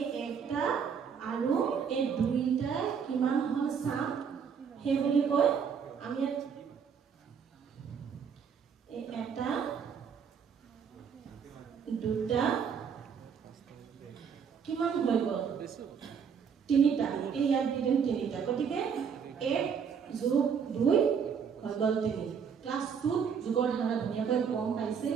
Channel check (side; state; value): left; quieter; 6.8 dB